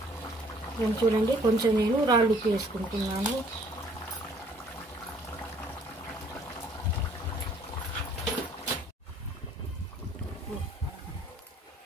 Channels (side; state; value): both; normal; correlation 0.59